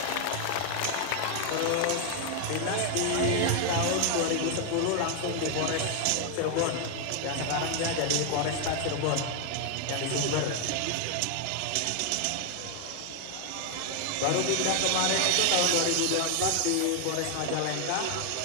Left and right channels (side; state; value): both; different; correlation 0.01